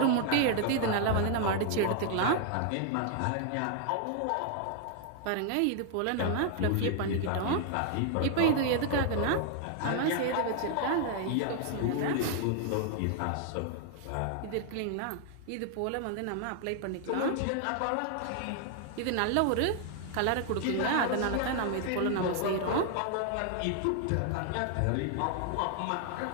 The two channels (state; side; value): different; both; correlation 0.00